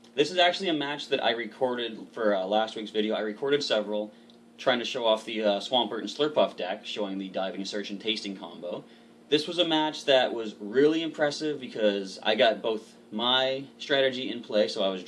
this is actually a match that I recorded for last week's video. I recorded several, trying to show off the Swampert and Slurpuff deck, showing the diving, search, and tasting combo. This was a match that was really impressive because I got both my strategy in play, so I was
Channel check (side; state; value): both; identical; correlation 1.00